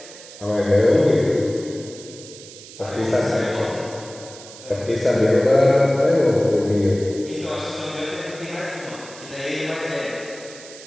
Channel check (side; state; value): right; noise; hiss, 17 dB below the sound